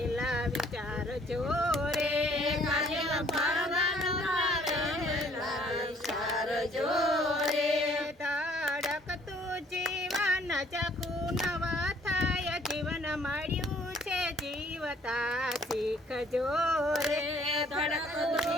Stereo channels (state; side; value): normal; both; correlation 0.60